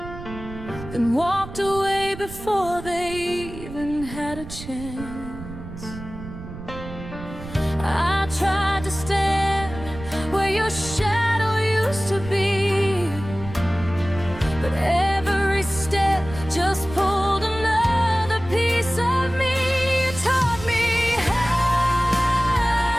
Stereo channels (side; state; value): right; noise; rumble, 12 dB below the sound